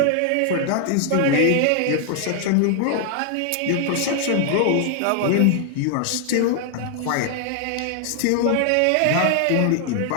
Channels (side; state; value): both; different; correlation 0.00